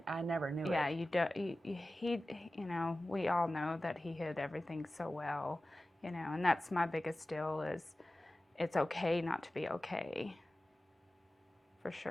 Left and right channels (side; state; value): both; normal; correlation 0.96